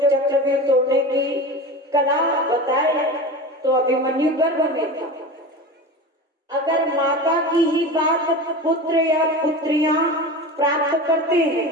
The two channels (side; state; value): both; normal; correlation 0.29